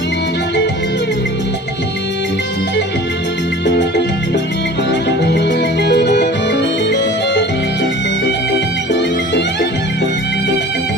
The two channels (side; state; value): both; normal; correlation 0.43